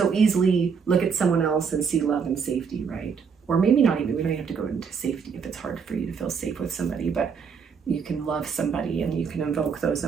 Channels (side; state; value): left; quieter; 6.1 dB